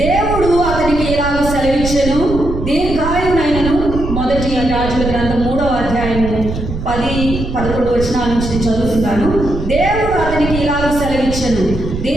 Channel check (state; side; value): noise; right; rumble, 6 dB below the sound